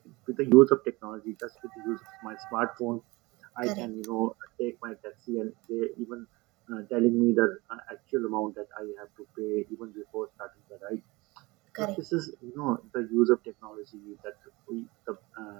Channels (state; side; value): quieter; left; 23.2 dB